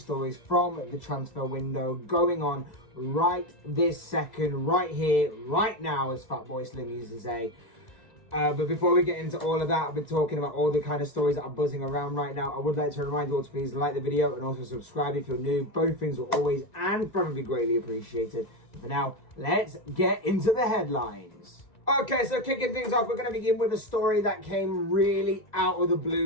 stories from the transfer window going on right this second, right here, right now, as Fatboy Slim used to say. But before we get into all of that, I've been talking about all the kind of stories that are buzzing around right now. I would like to remind you all to please like the video and also subscribe if you're new. Both things will always and probably greatly appreciated. But for now, let's get into the headlines. Okay, so kicking things off, we're going to begin with a story that came really out of the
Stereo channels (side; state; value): right; late; 2.0 ms